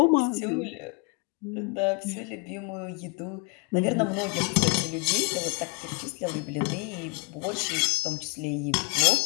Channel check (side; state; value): right; quieter; 32.6 dB